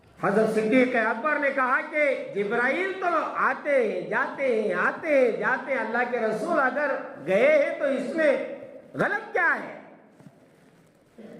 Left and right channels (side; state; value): both; identical; correlation 1.00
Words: حضرت صدیق اکبر نے کہا کہ جبرائیل تو آتے ہیں جاتے ہیں, آتے ہیں جاتے ہیں, اللہ کے رسول اگر گئے ہیں تو اس میں غلط کیا ہے؟